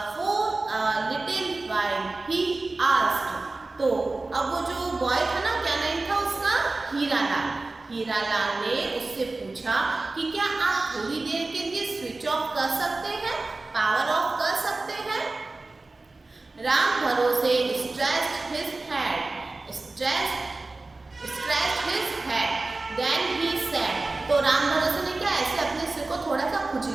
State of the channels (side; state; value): left; quieter; 3.3 dB